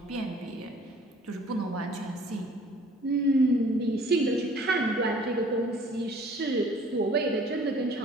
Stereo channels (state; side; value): normal; both; correlation 0.53